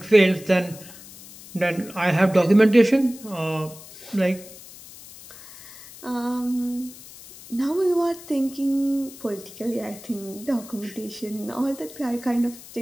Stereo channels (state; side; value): noise; left; hiss, 18 dB below the sound